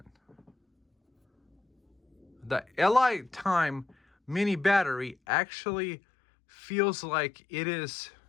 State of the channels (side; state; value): right; drops out; at 5.2 s